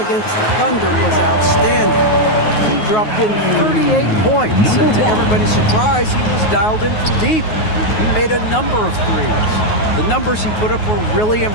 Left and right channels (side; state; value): right; late; 9.4 ms